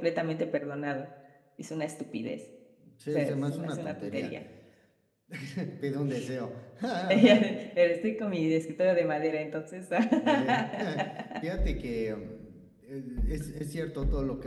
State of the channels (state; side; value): identical; both; correlation 1.00